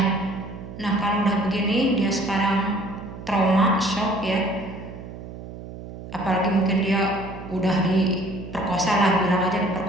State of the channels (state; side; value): noise; right; hum, 12 dB below the sound